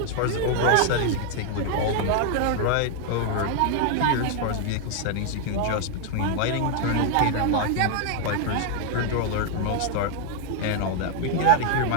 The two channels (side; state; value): both; different; correlation 0.00